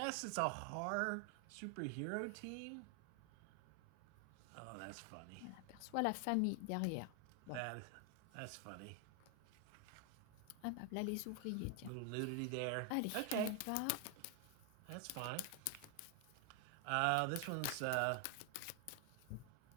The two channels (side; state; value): both; different; correlation 0.00